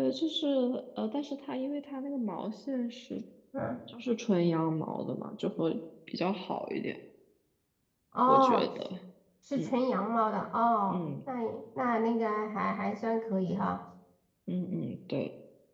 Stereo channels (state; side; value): identical; both; correlation 1.00